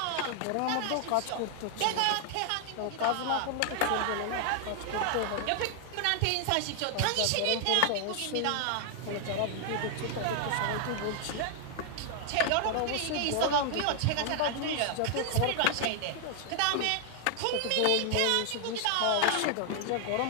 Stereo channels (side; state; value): both; different; correlation 0.00